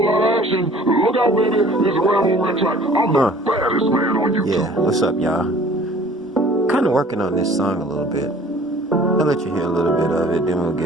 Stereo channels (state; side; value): normal; both; correlation 0.50